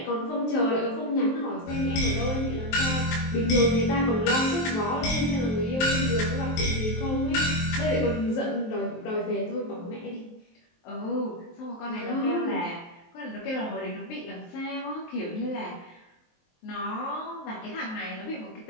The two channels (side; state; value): right; late; 23 ms